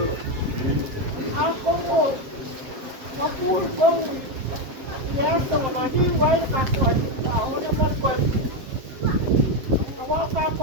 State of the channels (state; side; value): late; left; 7.6 ms